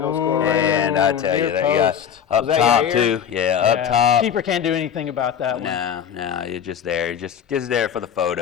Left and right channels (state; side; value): quieter; right; 8.4 dB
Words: goal scorer? And I tell you, near that guy post. up Was that top Yair? too. Yeah, up top. Keeper can't do anything about that one. No, you're just there. You're just there for the